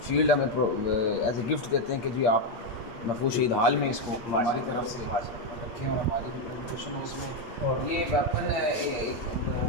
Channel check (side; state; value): right; late; 8.6 ms